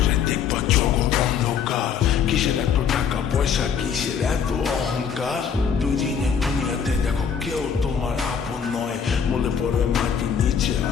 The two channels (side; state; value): right; quieter; 7.2 dB